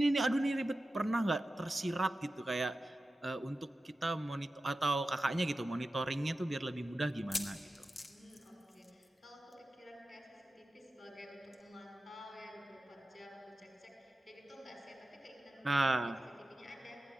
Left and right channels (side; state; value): both; normal; correlation 0.93